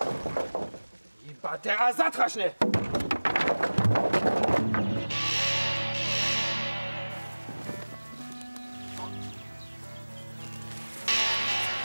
Iba teraz zatrašne!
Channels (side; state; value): both; inverted; correlation -1.00